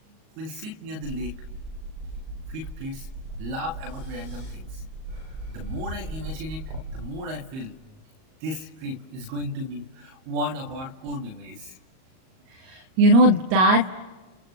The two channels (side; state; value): left; late; 38 ms